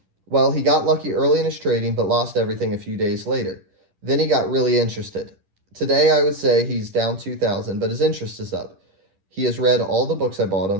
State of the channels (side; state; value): left; late; 10 ms